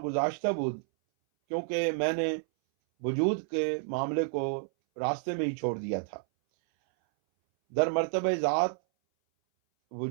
بود، کیونکہ میں نے وجود کے معاملے کو راستے میں ہی چھوڑ دیا تھا۔ در مرتبہ ذات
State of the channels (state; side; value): silent; left; 58 dB below the other